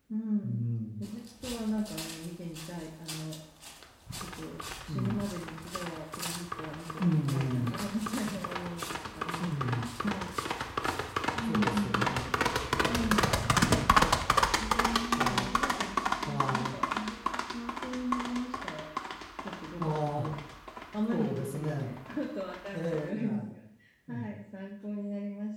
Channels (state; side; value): identical; both; correlation 1.00